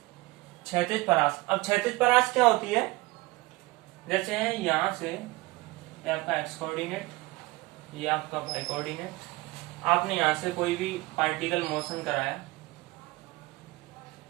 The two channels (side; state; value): left; quieter; 21.9 dB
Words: क्षैतिज परास। अब क्षैतिज परास क्या होती है, जैसे यहां से ये आपका एक्स कोऑर्डिनेट, ये आपका वाई कोऑर्डिनेट, आपने यहां से कोई भी पार्टिकल मोशन कराया,